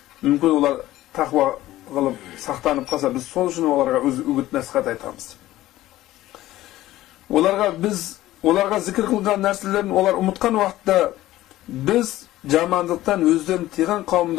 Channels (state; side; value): quieter; right; 15.5 dB